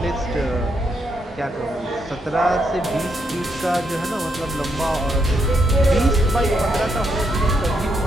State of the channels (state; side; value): normal; both; correlation 0.77